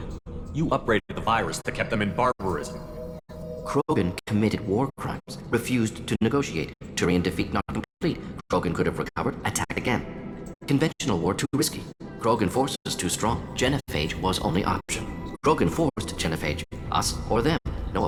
You upgraded the virus that kept them in barbarism. Krogan committed war crimes, refused to negotiate. Turian defeat not complete. Krogan could have recovered, attacked again. Conventional war too risky. Krogan forces too strong. Genophage was only option. Krogan forced genophage. Us or them. No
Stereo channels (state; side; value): identical; both; correlation 1.00